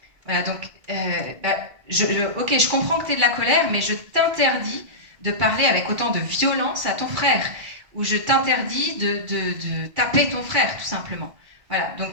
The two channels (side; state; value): left; late; 2.3 ms